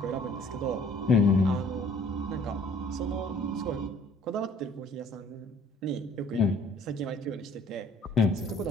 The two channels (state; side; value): normal; both; correlation 0.56